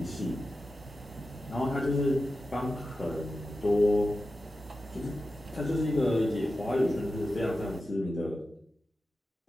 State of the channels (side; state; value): both; normal; correlation 0.92